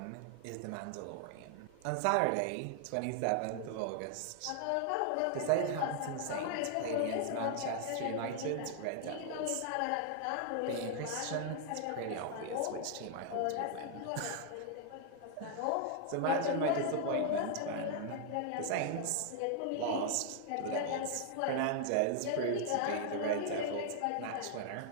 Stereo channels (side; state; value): both; different; correlation 0.00